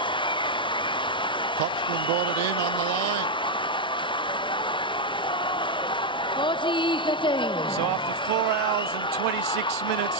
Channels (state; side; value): normal; both; correlation 0.02